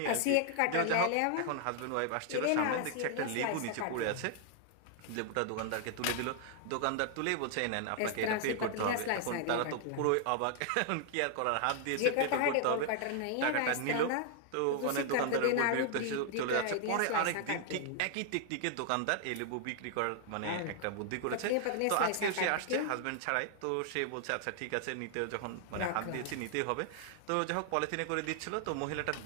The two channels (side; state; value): both; different; correlation 0.00